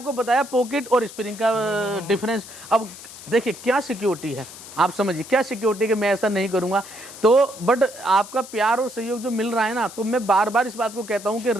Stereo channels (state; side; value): noise; left; hiss, 15 dB below the sound